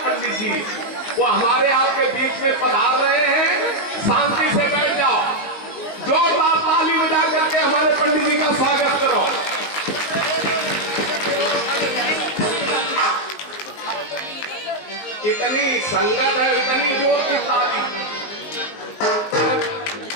जी, वो हमारे आपके बीच में पधार रहे हैं। शांति से बैठ जाओ, जोरदार ताली बजा करके हमारे पंडित जी का स्वागत करो। इतनी संगत है, इतनी जोर की ताली।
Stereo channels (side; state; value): right; late; 19 ms